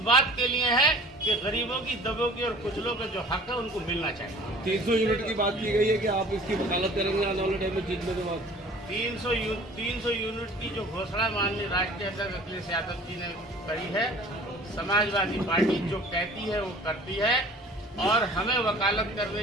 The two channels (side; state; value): both; normal; correlation 0.47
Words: बात के लिए है कि गरीबों की, दबों की और कुचलों के जो हक है उनको मिलना चाहिए। 300 यूनिट की बात की गई है कि आप इसकी वकालत करेंगे आने वाले टाइम में जीतने के बाद। 300 यूनिट की जो घोषणा माननीय राष्ट्रीय अध्यक्ष अखिलेश यादव जी ने करी है, समाजवादी पार्टी जो कहती है वो करती है और हमें वकालत